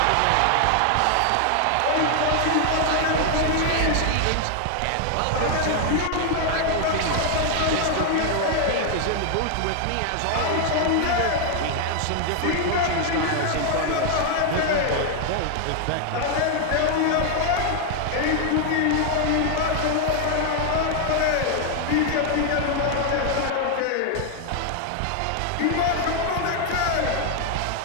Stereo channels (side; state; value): both; different; correlation 0.00